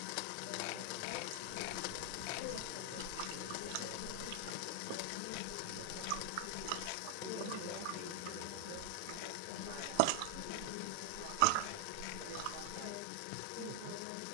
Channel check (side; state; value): both; different; correlation 0.00